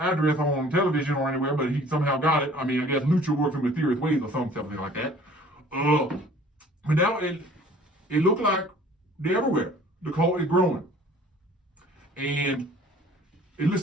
on television or anywhere, but he somehow got it. I mean, I guess Lucha works in mysterious ways or something like that. But now it looked like they're everywhere. The cult is growing. And it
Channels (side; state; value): both; normal; correlation 0.51